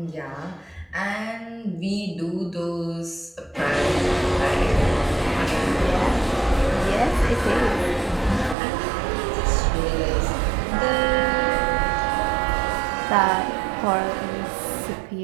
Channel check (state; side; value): drops out; left; at 8.6 s